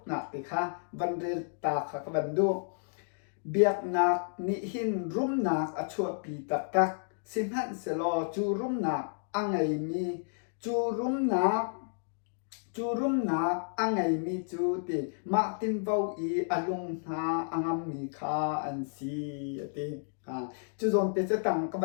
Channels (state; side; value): silent; right; digital silence